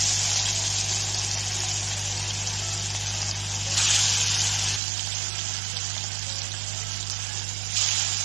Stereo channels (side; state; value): left; drops out; at 4.8 s